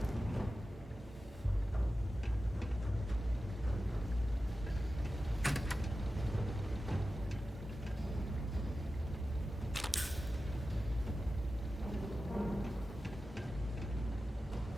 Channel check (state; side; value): normal; both; correlation 0.93